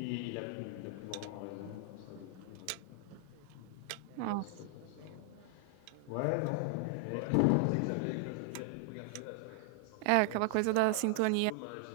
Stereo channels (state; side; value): different; both; correlation 0.00